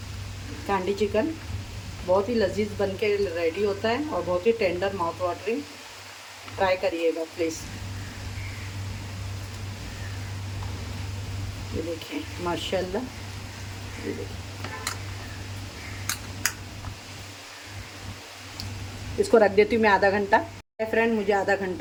कांडी चिकन बहुत ही लजीज बन के रेडी होता है और बहुत ही टेंडर माउथ वाटरिंग। ट्राई करिएगा प्लीज़। ये देखिए माशाल्लाह, ये देखिए। इसको रख देती हूँ मैं आधा घंटा। फ्रेंड, मुझे आधा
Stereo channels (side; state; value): both; identical; correlation 1.00